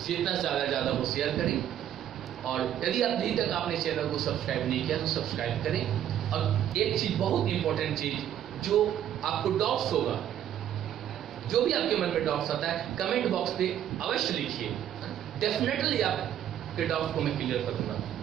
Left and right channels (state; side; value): quieter; left; 10.8 dB